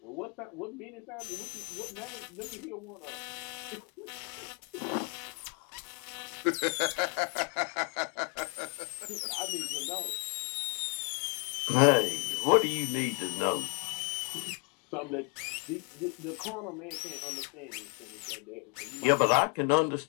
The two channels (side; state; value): right; quieter; 36.0 dB